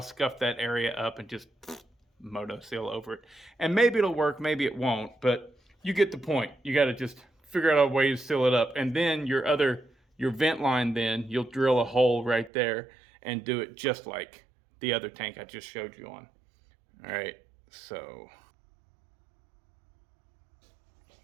scuff that area up and just Moto Seal over it. And maybe it'll work, maybe it won't, but you get the point. You got to just figure out a way to seal it up. And then your vent line, then you'll drill a hole right there and do it just like the other tank I just showed you on. All right, so.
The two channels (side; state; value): left; drops out; at 12.5 s